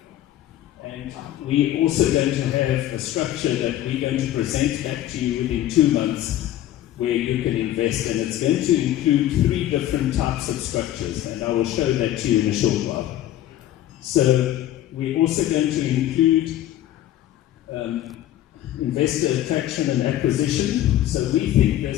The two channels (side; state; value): right; quieter; 13.2 dB